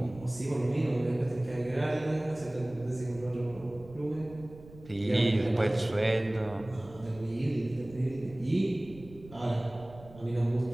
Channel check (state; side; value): noise; right; rumble, 19 dB below the sound